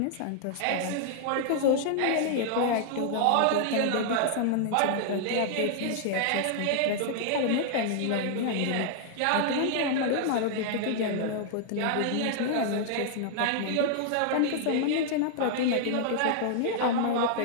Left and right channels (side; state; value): both; different; correlation -0.01